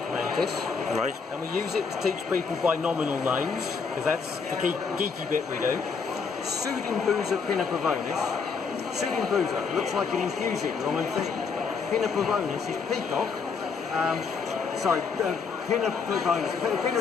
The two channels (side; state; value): right; quieter; 5.4 dB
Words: mantis. Right. And we use it to teach people binomial names, because that's the geeky bit we do. Pseudimbusa pinnapovonis. Pseudimbusa looks like an infusing Roman thing. Pinnapovonis is peacock. Pinnapovonis. Pinna